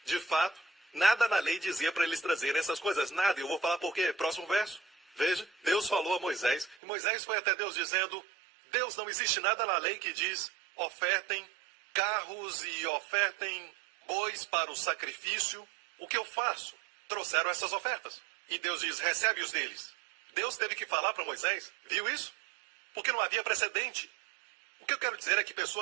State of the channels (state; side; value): drops out; left; at 6.8 s